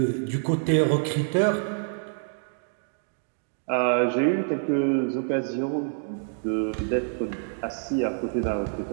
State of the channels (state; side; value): silent; left; digital silence